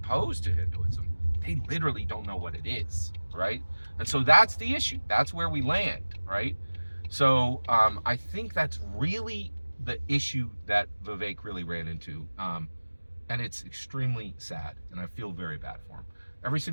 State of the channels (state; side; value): inverted; both; correlation -1.00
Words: to Hinduism. They literally don't know what it is, right? And so that's the issue. That's where we land, right? So I think that's really the issue that Vivek really ran into. And it's extremely sad, and I feel very bad for him. Every